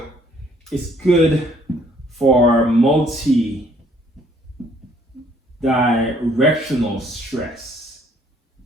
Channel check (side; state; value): both; normal; correlation 0.62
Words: it's good for multi-directional stress.